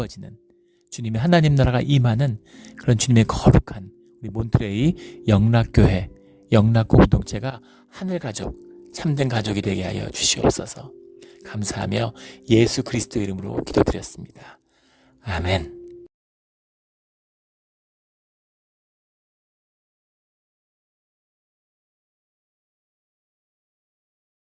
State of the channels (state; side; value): identical; both; correlation 1.00